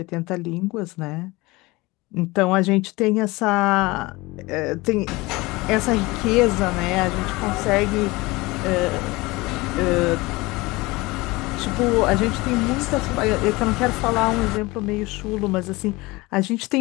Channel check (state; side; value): quieter; right; 22.2 dB